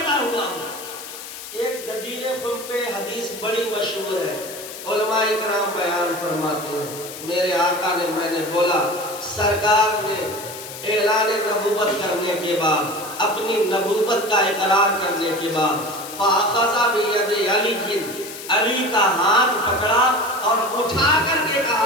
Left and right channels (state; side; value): noise; left; hiss, 12 dB below the sound